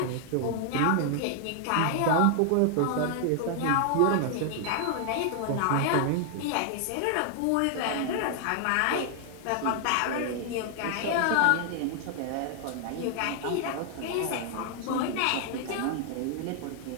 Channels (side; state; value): both; different; correlation 0.00